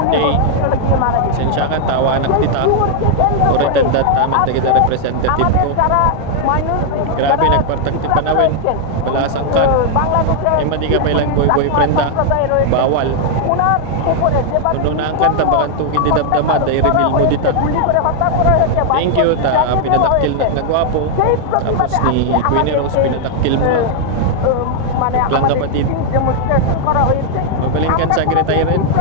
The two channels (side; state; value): both; different; correlation 0.00